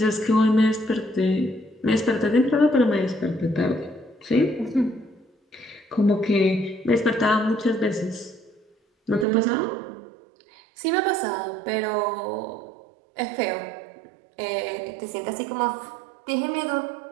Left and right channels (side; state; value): left; drops out; at 9.2 s